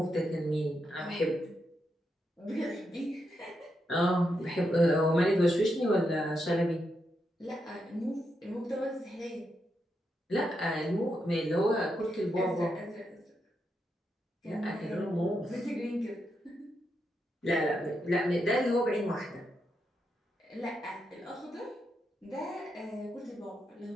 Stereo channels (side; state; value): both; normal; correlation 0.83